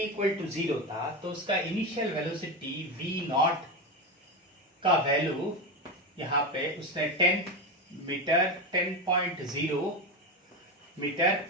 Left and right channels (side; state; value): both; normal; correlation 0.16